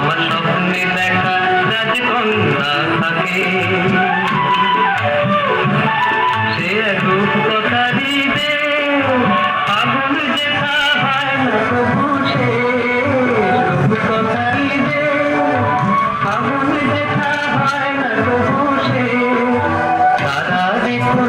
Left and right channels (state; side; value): identical; both; correlation 1.00